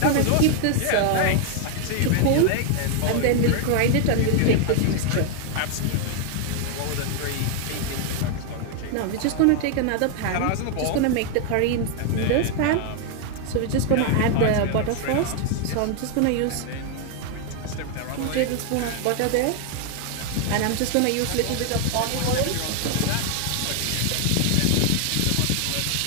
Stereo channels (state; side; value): different; both; correlation 0.00